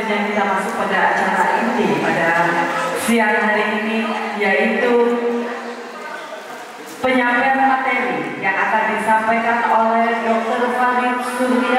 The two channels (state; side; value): identical; both; correlation 1.00